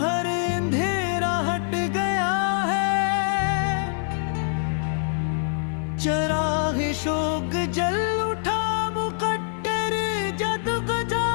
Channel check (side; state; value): right; silent; 59 dB below the other